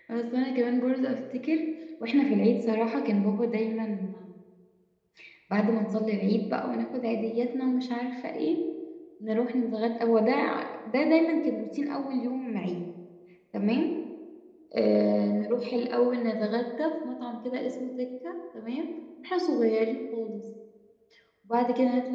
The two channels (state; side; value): identical; both; correlation 1.00